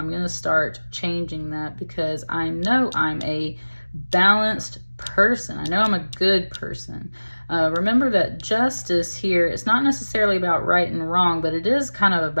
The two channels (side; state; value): both; inverted; correlation -1.00